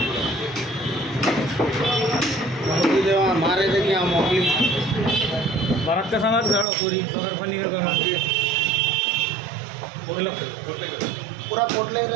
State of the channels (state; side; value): drops out; left; at 6.7 s